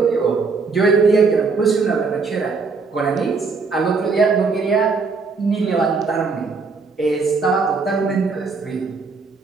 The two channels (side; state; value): left; quieter; 4.6 dB